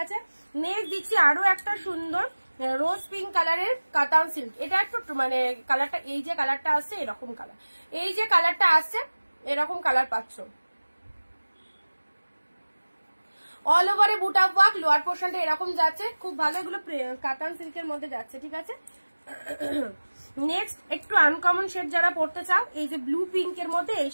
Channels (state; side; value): inverted; both; correlation -1.00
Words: আছে। নেক্সট দিচ্ছি আরো একটা সুন্দর রোজ পিঙ্ক কালারের কাতান সিল্ক, এটা একটু মানে কালারটা, এই যে কালারটা আসছে এরকম কালার, এই যে কালারটা আসছে এরকম কালার পাচ্ছ, অল ওভারে বুটা ওয়ার্ক, লোয়ার পোর্শনটা এরকম যাচ্ছে, খুব ভালো, এগুলো কাতান সিল্কের মধ্যে যাচ্ছে, ঠিক আছে। নেক্সট একটু আনকমন শেড যারা পড়তে চাও, এই যে ব্লু পিঙ্কের মধ্যে এই